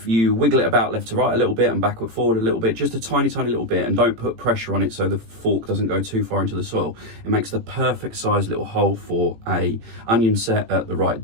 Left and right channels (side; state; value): left; late; 18 ms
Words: you wiggle it about left to right a little bit and backward forward a little bit, just a tiny little bit, and don't put pressure on it so the fork doesn't go too far into the soil, it makes the perfect size little hole for a onion set at the right